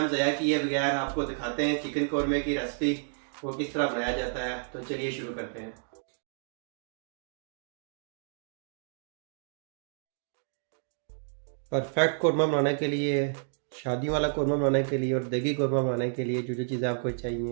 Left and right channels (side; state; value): left; silent; digital silence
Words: ज़ाया किए बगैर आपको दिखाते हैं चिकन कौरमे की रेसिपी, वो किस तरह बनाया जाता है। तो चलिए शुरू करते हैं। परफेक्ट कौरमा बनाने के लिए, शादी वाला कौरमा बनाने के लिए और देगी कौरमा बनाने के लिए जो जो चीज़ें आपको